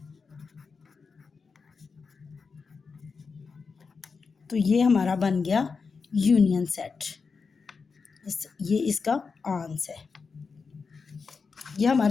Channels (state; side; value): quieter; right; 5.0 dB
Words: तो ये हमारा बन गया यूनियन सेट। ये इसका आंसर है। ये